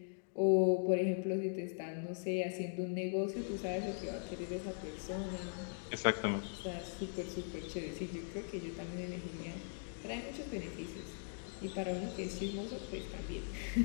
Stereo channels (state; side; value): silent; right; digital silence